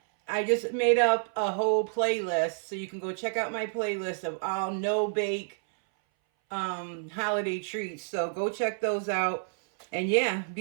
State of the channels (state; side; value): silent; left; 59 dB below the other